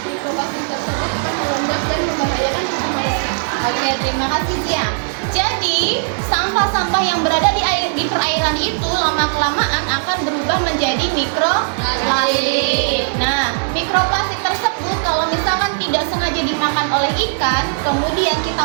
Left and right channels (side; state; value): left; silent; digital silence